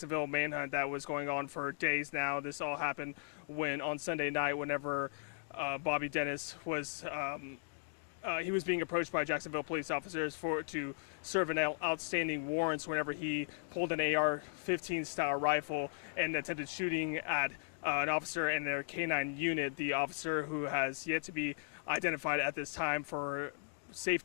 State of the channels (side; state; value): right; silent; digital silence